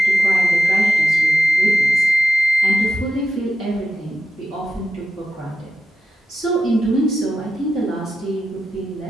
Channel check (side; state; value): both; normal; correlation 0.90